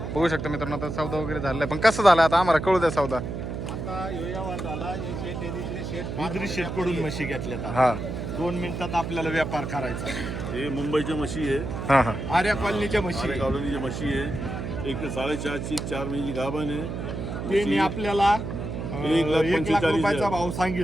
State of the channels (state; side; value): noise; right; hum, 5 dB below the sound